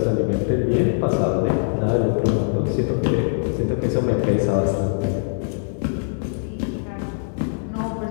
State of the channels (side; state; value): right; silent; digital silence